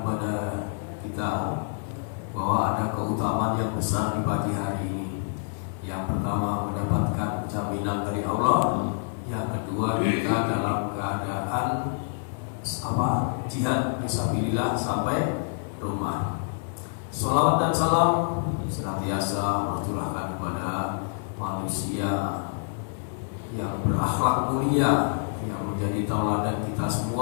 kepada kita bahwa ada keutamaan yang besar di pagi hari ini. Yang pertama, mendapatkan jaminan dari Allah. Yang kedua, kita dalam keadaan jihad fisabilillah sampai rumah. Sholawat dan salam senantiasa tercurahkan kepada manusia yang berakhlak mulia, yang menjadi tauladan kita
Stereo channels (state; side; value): silent; right; digital silence